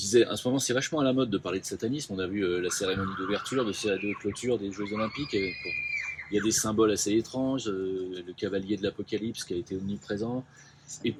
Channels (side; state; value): both; identical; correlation 1.00